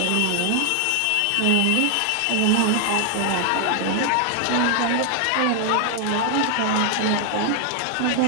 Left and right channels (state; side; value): different; both; correlation 0.00